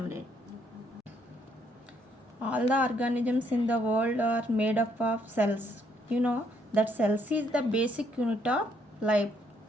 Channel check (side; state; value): both; normal; correlation 0.70